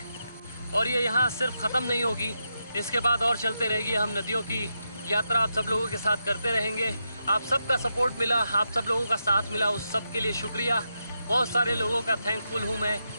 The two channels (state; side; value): inverted; both; correlation -0.85